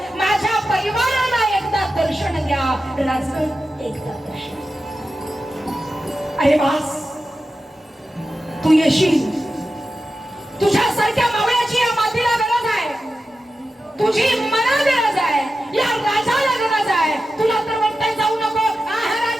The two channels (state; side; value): normal; both; correlation 0.92